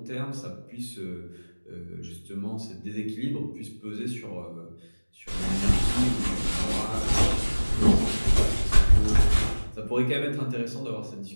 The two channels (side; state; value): both; inverted; correlation -1.00